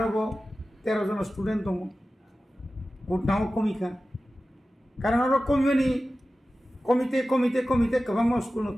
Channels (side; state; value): both; normal; correlation 0.95